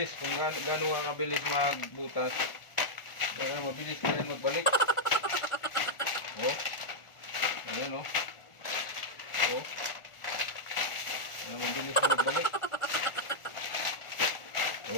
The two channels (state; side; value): late; right; 1.4 ms